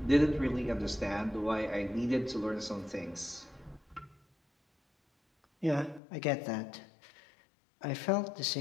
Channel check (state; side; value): drops out; right; at 6.0 s